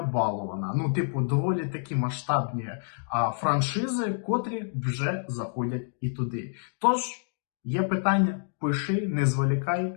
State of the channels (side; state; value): right; silent; digital silence